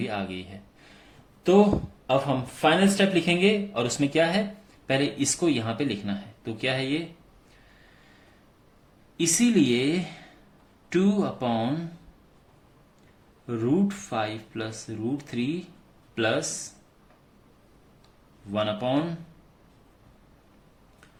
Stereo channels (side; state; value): both; identical; correlation 1.00